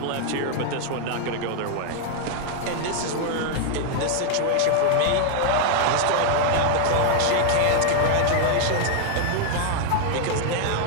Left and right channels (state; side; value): different; both; correlation 0.00